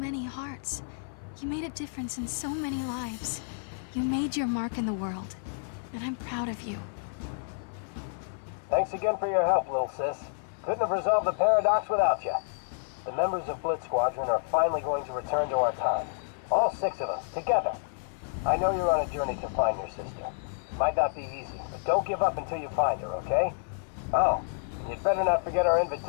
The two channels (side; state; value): right; silent; 58 dB below the other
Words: hearts. You made a difference in so many lives. You made your mark in the world, and I'm proud of you. Thanks again for your help, little sis. Couldn't have resolved the paradox without you. The members of Blitz Squadron are finally going to return to our time. All 6 of us, together. I know you're on a journey to find your sister. Might not be easy, but don't give up until you find her, okay? Oh, and you'd better not forget our